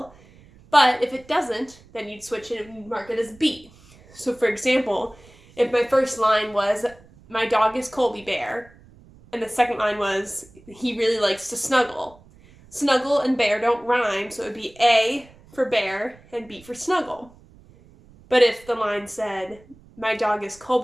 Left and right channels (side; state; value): right; noise; rumble, 25 dB below the sound